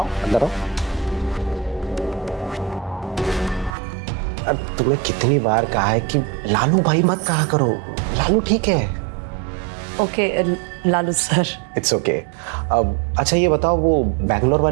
अंदर आओ। अब तुम्हें कितनी बार कहा है कि लालू भाई मत कहा करो, लालू ठीक है। Okay Lalu sir. It's okay. अब अच्छा ये बताओ, वो बैंगलोर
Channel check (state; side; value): drops out; left; at 3.7 s